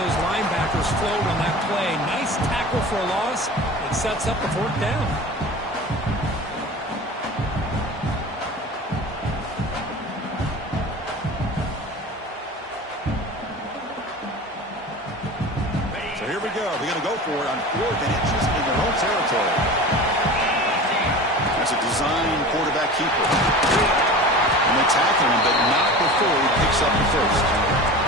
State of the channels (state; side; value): normal; both; correlation 0.35